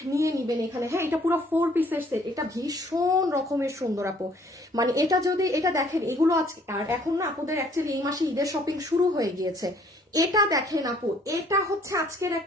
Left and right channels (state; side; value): normal; both; correlation 0.60